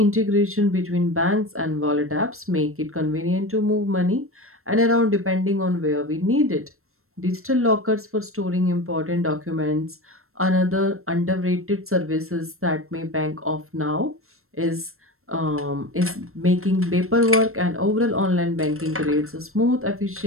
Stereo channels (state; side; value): late; left; 0.62 ms